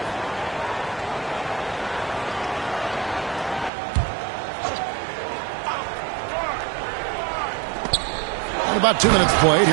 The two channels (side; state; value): left; drops out; at 3.7 s